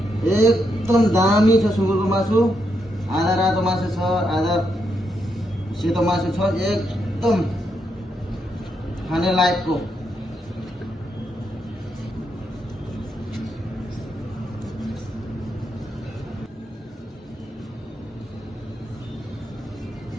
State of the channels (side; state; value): both; normal; correlation 0.80